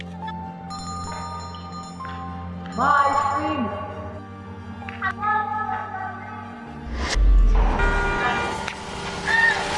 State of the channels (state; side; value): identical; both; correlation 1.00